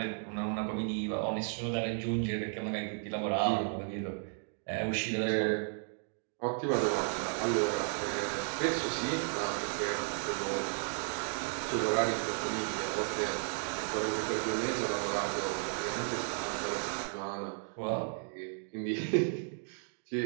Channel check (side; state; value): left; silent; 55 dB below the other